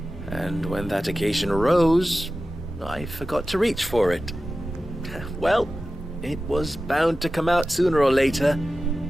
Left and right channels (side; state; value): both; normal; correlation 0.94